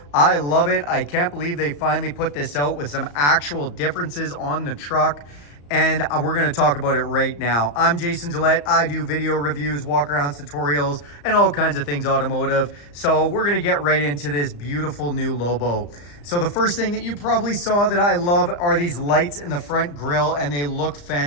I love it. I can't believe they finally put this out with some actual differences on the truck. And we're going to talk about it right now. I'm Jason Gillette. I do video reviews, walk-arounds, tutorials, and all kinds of things automotive. So we're going to get right into this beautiful new Lobo. So the first thing that you probably saw that I love are these lights in the front grille, and they look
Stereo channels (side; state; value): right; late; 34 ms